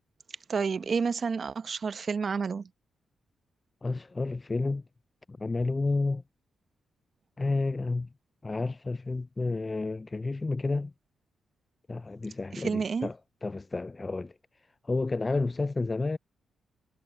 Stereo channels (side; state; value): both; normal; correlation 0.92